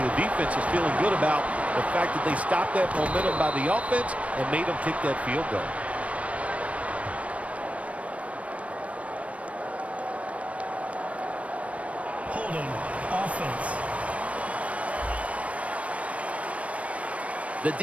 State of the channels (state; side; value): late; left; 0.064 ms